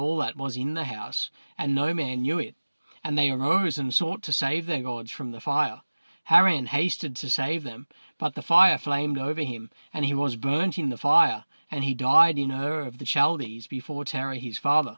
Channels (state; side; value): inverted; both; correlation -1.00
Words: that was in the house, and no man knew it. And they arose and sought to save their gods from the fire. Haran hasted to save them, but the fire flamed over him, and he was burnt in the fire, and he died in Ur of the Chaldees before Terah his father,